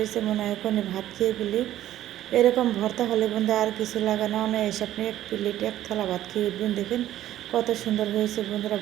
মনে হয় এখনই ভাত খেয়ে ফেলি। এরকম ভর্তা হলে বন্ধু আর কিছু লাগে না, এসে আপনি এক প্লেট এক থালা ভাত খেয়ে উঠবেন। দেখেন কত সুন্দর হয়েছে বন্ধুরা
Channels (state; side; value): quieter; left; 13.1 dB